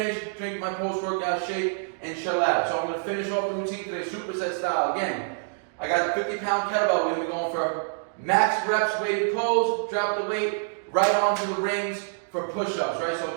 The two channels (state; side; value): silent; left; digital silence